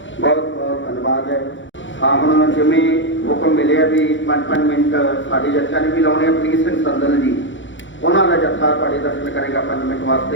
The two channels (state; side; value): late; right; 0.55 ms